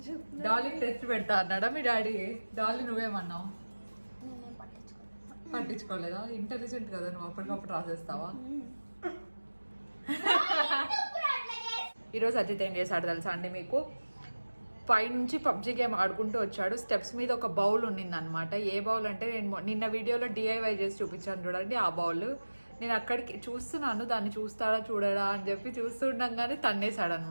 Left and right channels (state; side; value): inverted; both; correlation -1.00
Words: చెప్పి డాలీ టెస్ట్ పెడతా అన్నాడా మీ డాడీ? డాలీ నువ్వేమన్నావు? పట్టించుకోలేదా? ఇంటెలిజెంట్ కదా నువ్వు, అప్పటికప్పుడు రాసేస్తావా? ఈరోజు అజిత్ ఏం చేశాడు తెలుసా అండి మీకు? పైనుంచి పబ్జి గేమ్ ఆడుకుంటూ వచ్చాడు. స్టెప్స్ మీద ఒక బౌల్ ఉన్నింది అనమాట. ఏ బౌల్ అంటే నేను నిన్న వీడియోలో DIY చేసి చూపించాను చూడండి, ఆ బౌల్. నేను అక్కడికి చూస్తున్నాను, దాన్ని చూస్తాడా చూడడా అని చెప్పి చూస్తుండగానే తన్నేశాడు